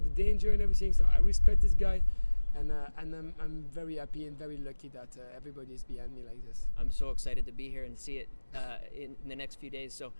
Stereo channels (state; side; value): inverted; both; correlation -1.00